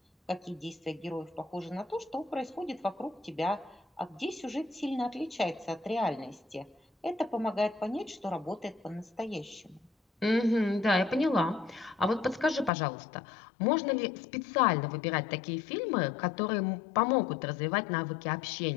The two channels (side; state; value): right; drops out; at 12.7 s